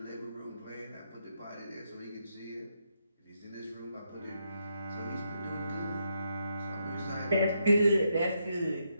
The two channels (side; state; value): both; inverted; correlation -0.80